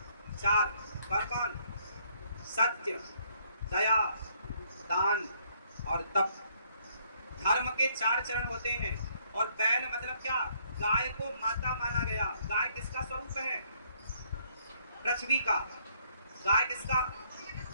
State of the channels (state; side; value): inverted; both; correlation -0.68